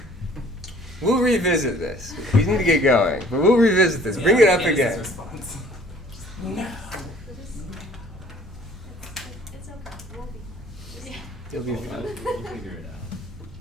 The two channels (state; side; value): normal; both; correlation 0.54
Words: We'll revisit this. We need to get going, but we'll revisit this. Bring it up again. No. It's okay. We'll be fine. You'll be fine. We'll figure it out.